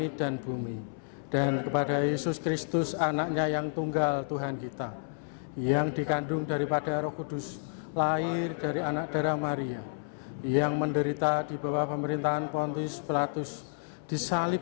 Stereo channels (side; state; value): right; silent; 57 dB below the other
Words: dan bumi, dan kepada Yesus Kristus, anaknya yang tunggal Tuhan kita, yang dikandung daripada Roh Kudus, lahir dari anak darah Maria, yang menderita di bawah pemerintahan Pontius Pilatus,